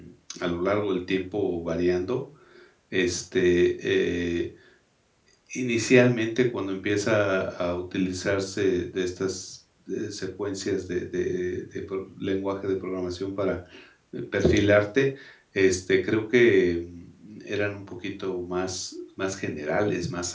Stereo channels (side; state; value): both; identical; correlation 1.00